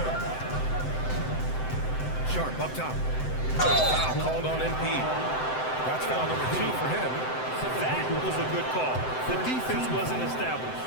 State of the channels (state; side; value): late; right; 7.8 ms